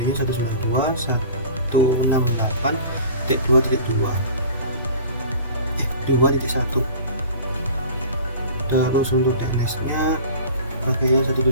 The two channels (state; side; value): inverted; both; correlation -0.40